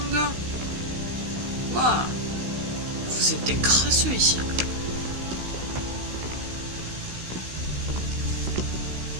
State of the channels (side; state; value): left; late; 16 ms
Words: gars. Waouh. Vous êtes des crasseux ici.